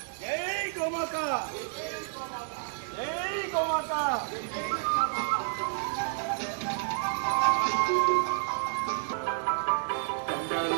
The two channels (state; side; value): silent; left; digital silence